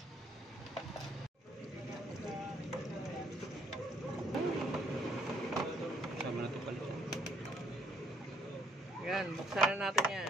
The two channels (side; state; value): both; normal; correlation 0.67